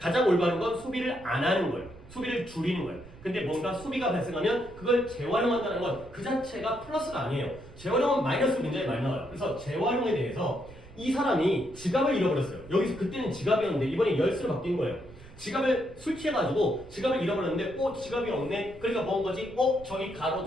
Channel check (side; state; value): right; noise; rumble, 19 dB below the sound